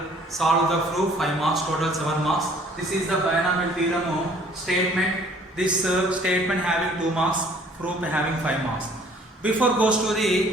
solve the proof 5 marks, total 7 marks. This is the binomial theorem statement. This statement having 2 marks, proof having 5 marks. Before goes to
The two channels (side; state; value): both; normal; correlation 0.57